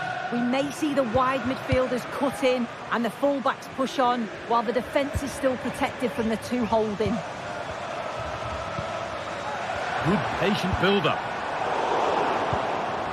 We may see the wide midfielders cut in and the fullbacks push on, while the defence is still protected from the 2 holding. Good patient build-up.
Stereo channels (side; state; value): both; identical; correlation 1.00